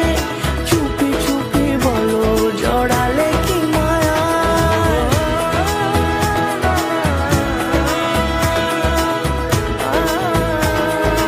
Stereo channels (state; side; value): identical; both; correlation 1.00